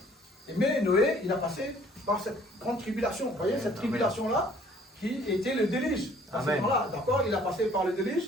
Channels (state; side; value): normal; both; correlation 0.57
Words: mais Noé, il a passé par cette grande tribulation, vous voyez, cette tribulation-là, qui était le déluge. À ce moment-là, d'accord, il a passé par le déluge,